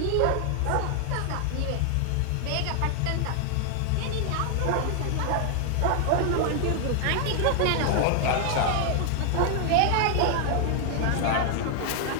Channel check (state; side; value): different; both; correlation 0.00